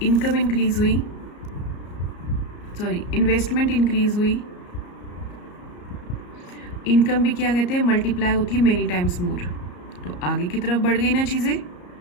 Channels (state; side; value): late; right; 34 ms